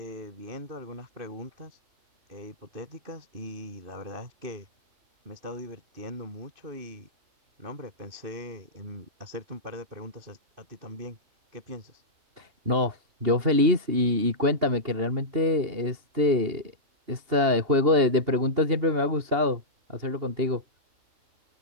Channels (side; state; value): left; late; 2.8 ms